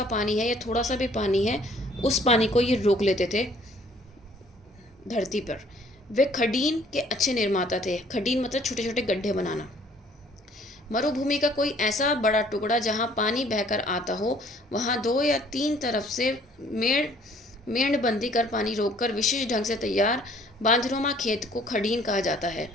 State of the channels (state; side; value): normal; both; correlation 0.58